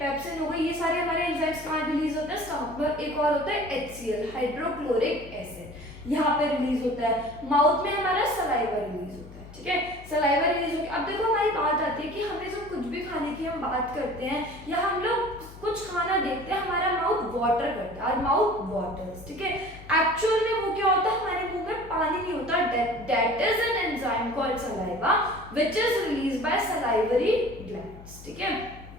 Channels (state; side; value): noise; left; hum, 17 dB below the sound